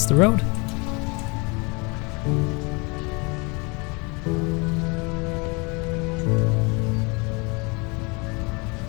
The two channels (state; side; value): quieter; right; 29.5 dB